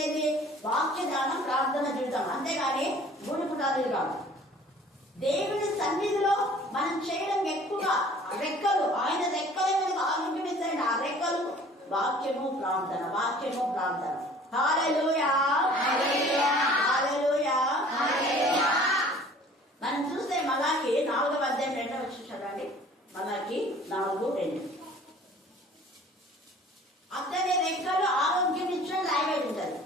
ఏంటి? వాక్య ధ్యానం, ప్రార్థన జీవితం, అంతేగాని గుడి పుటాలు కాదు. దేవుని సన్నిధిలో మనం చేయడం ఎక్కువగా రెక్కలు, ఆయన రెక్కలే మనకు ఆరోగ్యం. ఆ రెక్కలు వాక్యము ప్రార్థన, వాక్యము ప్రార్థన. హల్లెలూయా, హల్లెలూయా, హల్లెలూయా. మనం చూస్తే మలాకి 4వ అధ్యాయం 2వ వచనం చదవండి. మలాకి 4:2. అతని రెక్కలు ఆరోగ్యం ఇచ్చిన రాయబడి ఉంటుంది.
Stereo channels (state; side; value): normal; both; correlation 0.50